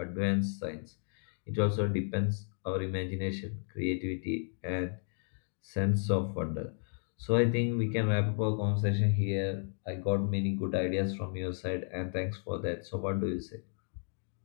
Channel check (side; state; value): right; silent; 56 dB below the other